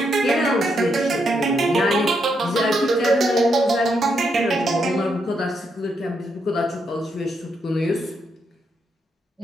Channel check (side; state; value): both; normal; correlation 0.79